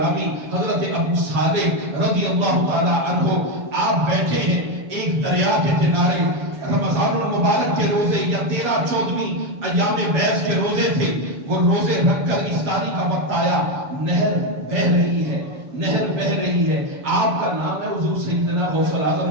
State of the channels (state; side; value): late; left; 7.1 ms